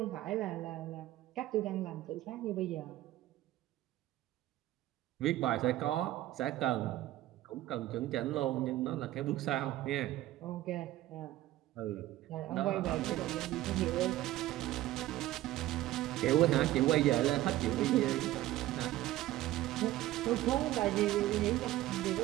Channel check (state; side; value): quieter; left; 15.2 dB